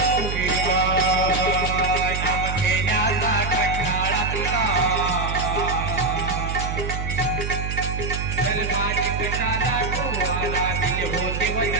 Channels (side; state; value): right; noise; hum, 3 dB below the sound